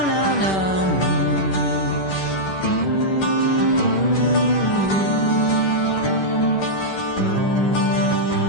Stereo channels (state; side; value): late; right; 10 ms